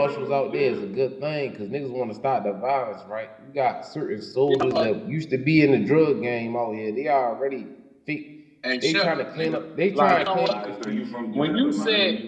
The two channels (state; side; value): identical; both; correlation 1.00